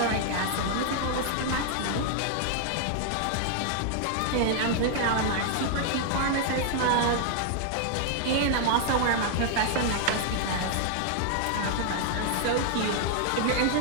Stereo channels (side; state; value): both; different; correlation 0.00